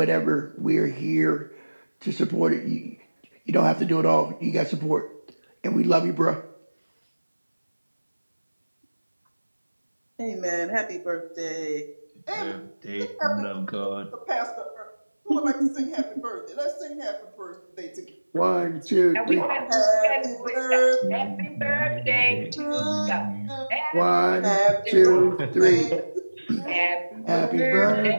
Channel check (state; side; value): inverted; both; correlation -1.00